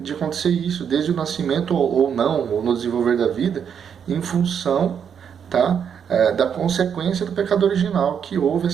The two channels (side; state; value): left; quieter; 7.7 dB